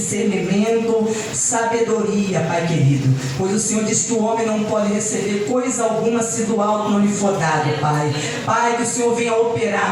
sabedoria, Pai querido. Pois o Senhor disse que o homem não pode receber coisa alguma se do alto não lhe for dado, Pai. Pai, que o Senhor venha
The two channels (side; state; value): both; identical; correlation 1.00